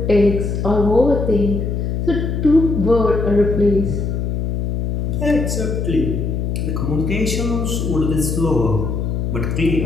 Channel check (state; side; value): noise; left; hum, 1 dB below the sound